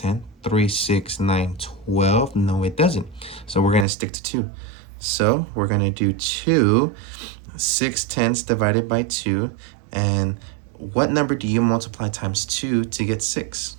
3, 6, 9, 12. No, it doesn't. So we're going to stick to 2. So we're going to do 2. 6/10 divided by 2. And what number do you multiply times 2 to get 6?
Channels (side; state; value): left; drops out; at 3.9 s